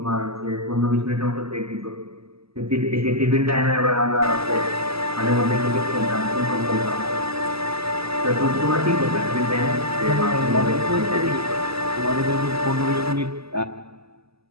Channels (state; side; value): late; left; 0.77 ms